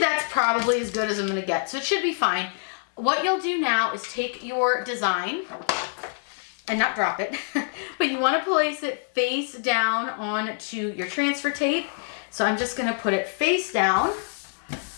probably as good as I'm going to get, so it should be fine. What you'll do now is take your design and not drop it, but you want to place it face down onto your transfer tape. So I'm just going to put it face down,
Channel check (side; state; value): right; silent; 60 dB below the other